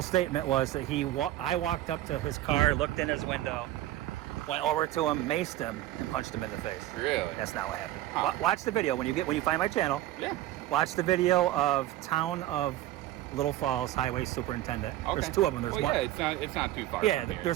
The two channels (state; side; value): quieter; left; 14.6 dB